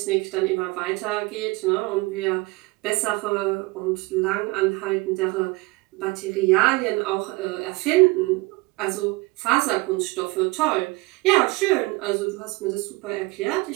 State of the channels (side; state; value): left; quieter; 24.0 dB